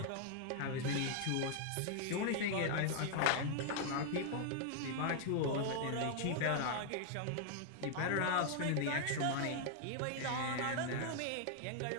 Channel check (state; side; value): different; both; correlation -0.01